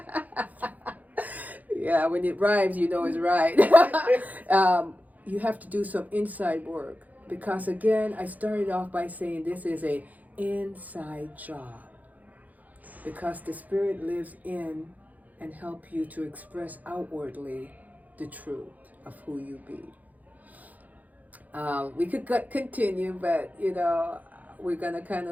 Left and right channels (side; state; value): left; late; 0.079 ms